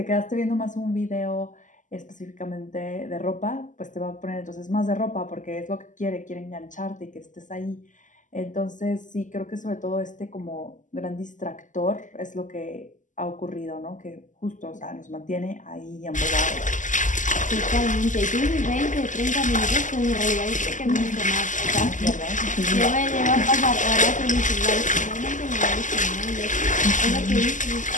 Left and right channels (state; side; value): late; right; 0.37 ms